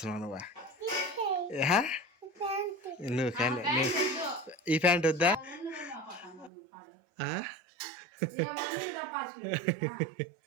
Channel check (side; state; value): left; drops out; at 6.5 s